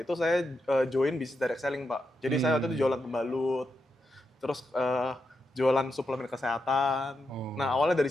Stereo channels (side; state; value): both; normal; correlation 0.85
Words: saya join bisnis direct selling, Pak. Jadi saya waktu itu jualan pembalut, terus jualan suplemen kesehatan. Nah awalnya dari